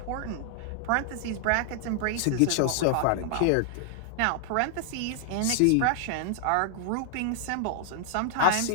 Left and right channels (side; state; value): both; different; correlation 0.00